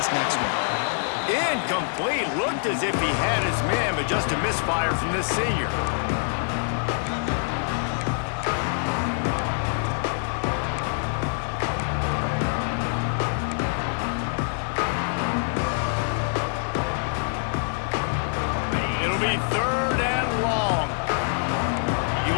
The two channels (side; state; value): right; silent; digital silence